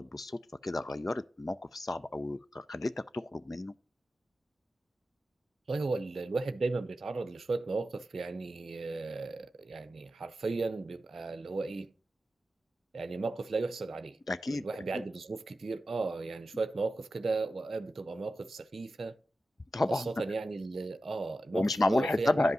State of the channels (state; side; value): normal; both; correlation 0.92